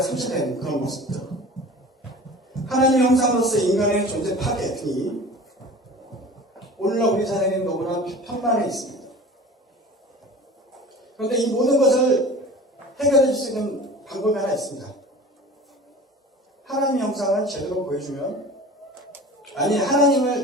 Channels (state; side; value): normal; both; correlation 0.39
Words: 그런 모습들. 하나님의 형상으로서 인간의 존재 파괴 등이 오늘날 우리 사회는 너무나 편만해 있습니다. 그런데 이 모든 것을 해결해 줄 수 있는 방법이 하나 있습니다. 하나님의 형상을 제대로 보여주면,